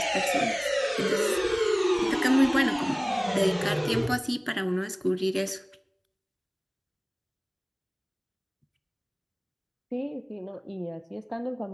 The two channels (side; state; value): both; identical; correlation 1.00